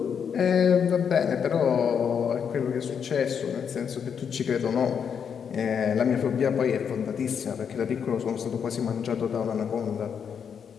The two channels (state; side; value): quieter; right; 7.3 dB